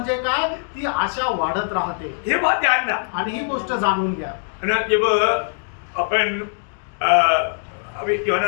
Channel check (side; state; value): right; silent; digital silence